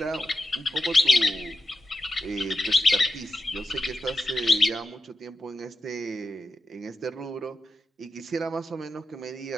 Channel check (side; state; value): both; normal; correlation 0.87